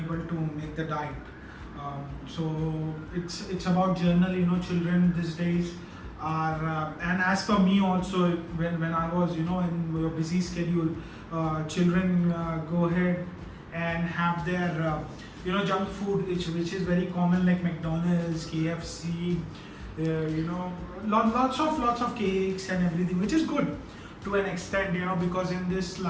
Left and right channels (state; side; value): identical; both; correlation 1.00